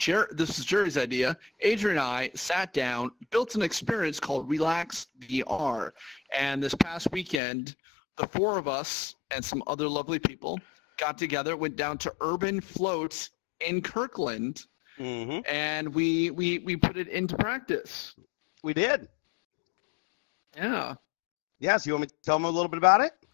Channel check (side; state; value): right; drops out; at 7.4 s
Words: this is Jerry's idea. Adrian and I sat down, built an experience called Relax VR. And this past weekend, the four of us and some other lovely people got together, went down to Urban Float in Kirkland, and we put it into practice. We did. Yeah. Yeah, so you want me to tell them a little bit about it?